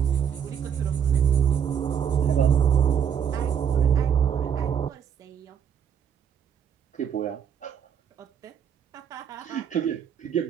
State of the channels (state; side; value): quieter; left; 8.1 dB